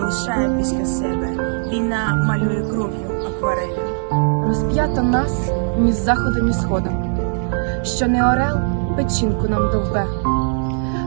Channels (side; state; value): left; silent; digital silence